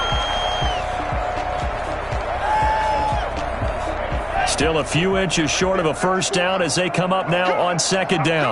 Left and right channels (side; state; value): both; identical; correlation 1.00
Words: Still a few inches short of a first down as they come up now on second